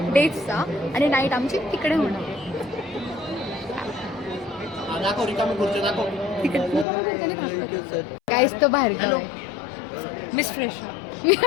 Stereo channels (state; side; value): drops out; right; at 6.9 s